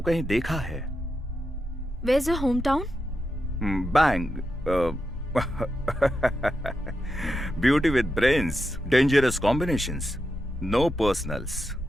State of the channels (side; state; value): both; normal; correlation 0.87